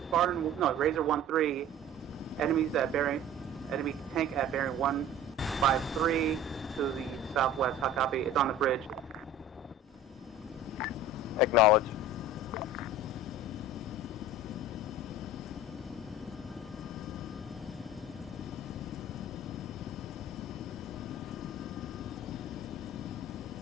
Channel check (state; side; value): normal; both; correlation 0.42